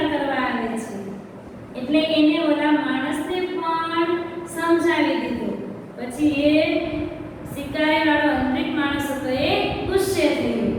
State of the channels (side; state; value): both; identical; correlation 1.00